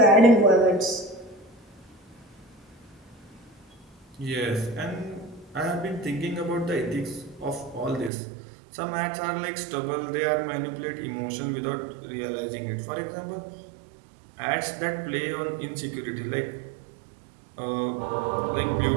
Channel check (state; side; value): drops out; left; at 8.1 s